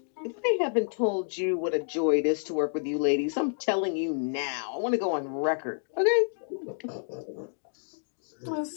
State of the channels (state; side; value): silent; right; digital silence